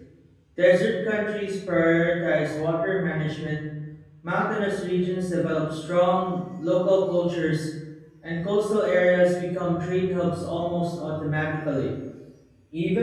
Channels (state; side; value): identical; both; correlation 1.00